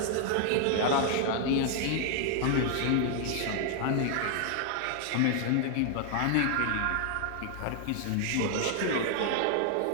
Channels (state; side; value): different; both; correlation 0.00